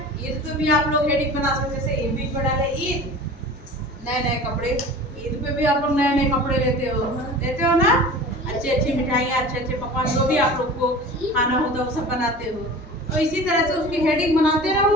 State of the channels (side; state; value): both; normal; correlation 0.38